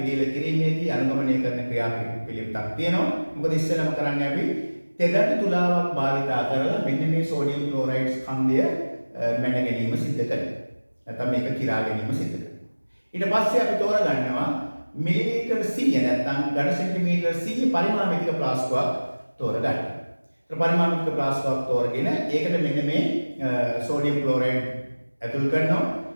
කිරීමේදී අනුගමනය කරන ක්‍රියාපිළිවෙලක් තියෙනවා. මොකද ඉස්සෙල්ලාම කරන්නේ අපි තෙදට තුලාවක් භාවිතා කරලා මෙන්න මේ සෝඩියම් ක්ලෝරයිඩ් ස්කන්ධය මැන ගැනීම සිද්ධ කරනවා. නැත්නම් මේක කිරා ගැනීම සිද්ධ කරනවා. ඊට පස්සේ අපි තෝරගන්නවා මිලිලීටර් 100 නැත්නම් ඝන සෙන්ටිමීටර් 100 පරිමාණික ප්ලාස්කුවක් තෝරගන්න. ඒ පරිමාණික ප්ලාස්කුවක් තෝරගෙන ඒකට මෙන්න මේ සෝඩියම් ක්ලෝරයිඩ් ඇතුල් කරනවා.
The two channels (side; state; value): both; inverted; correlation -1.00